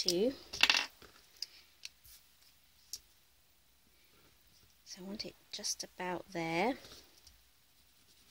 So I want it just about there.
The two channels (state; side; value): identical; both; correlation 1.00